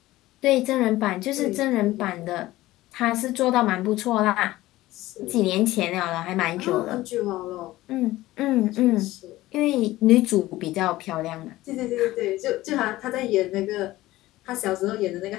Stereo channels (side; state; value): right; quieter; 17.0 dB